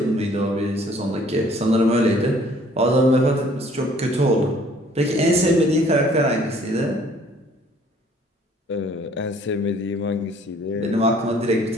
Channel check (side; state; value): both; normal; correlation 0.57